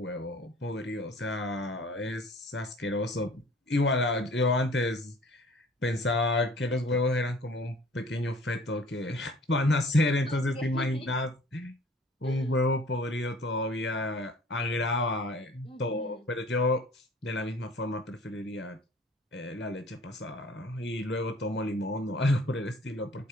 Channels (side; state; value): both; normal; correlation 0.50